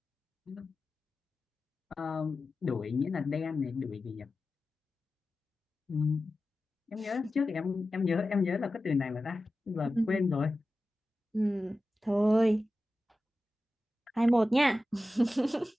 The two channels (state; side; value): normal; both; correlation 0.94